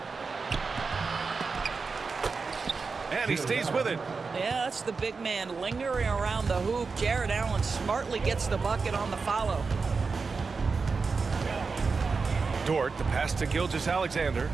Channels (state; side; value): quieter; left; 4.7 dB